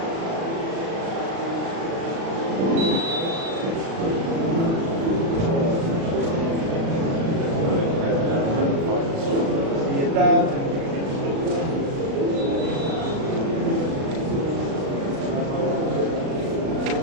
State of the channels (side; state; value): left; late; 36 ms